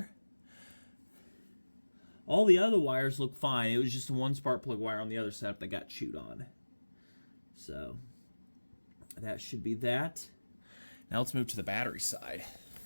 All the other wires look fine. It was just one spark plug wire on the other setup that got chewed on. So that should be that. Now let's move to the battery side.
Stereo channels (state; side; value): inverted; both; correlation -1.00